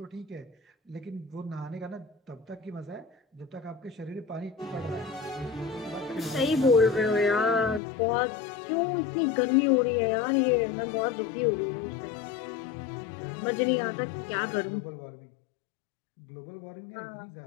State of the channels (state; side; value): drops out; right; at 7.8 s